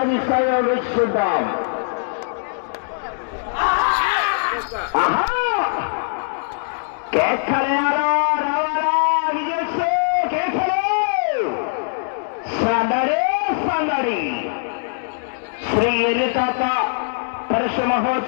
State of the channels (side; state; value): right; silent; digital silence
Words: వేచి చూద్దాం. ఆహా కేకలేయాలా రావాలా విజయ్ కేకలే సందడి సందడి. శ్రీ ఎరితాత పరుష